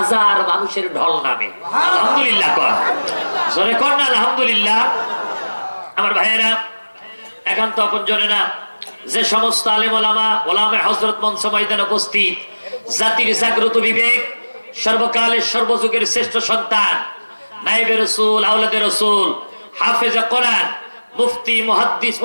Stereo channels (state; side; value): inverted; both; correlation -1.00